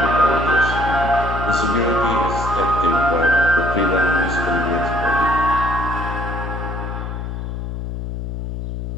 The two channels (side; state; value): left; noise; hum, 5 dB below the sound